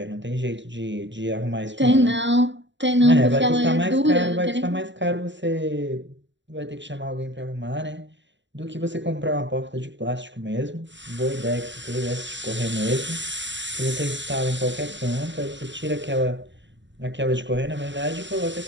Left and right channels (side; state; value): left; late; 0.53 ms